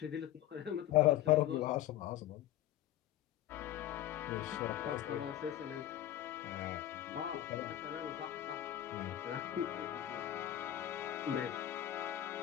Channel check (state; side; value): quieter; right; 13.0 dB